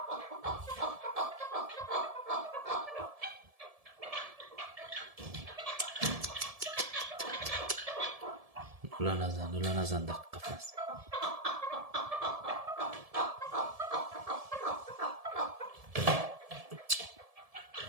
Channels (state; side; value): late; left; 1.7 ms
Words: دولا نزن در قفس